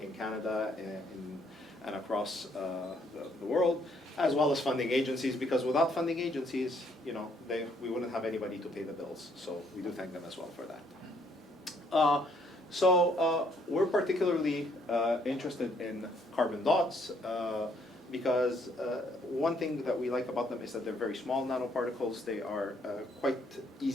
Canada and across the world, as well as funding agencies, because without funding agencies, we wouldn't have anybody to pay the bills. So we do thank them as well for that. So we're particularly interested in carbon dots because one thing that we like about them is that they're very small nanoparticles. They are quite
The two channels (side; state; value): both; normal; correlation 0.68